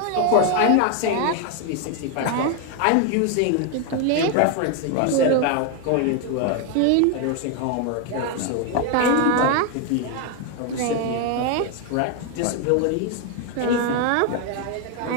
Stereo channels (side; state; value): both; different; correlation 0.01